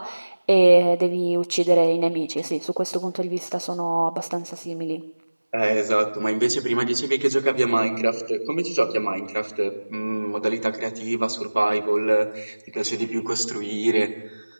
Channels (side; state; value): both; inverted; correlation -1.00